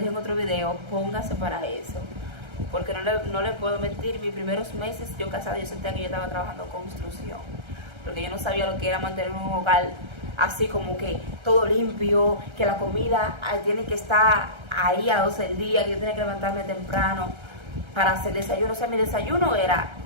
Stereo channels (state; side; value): late; left; 1.3 ms